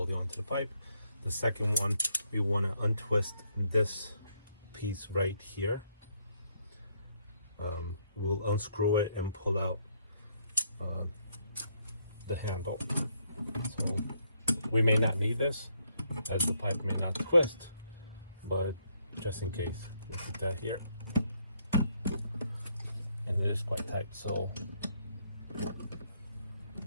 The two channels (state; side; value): inverted; both; correlation -0.72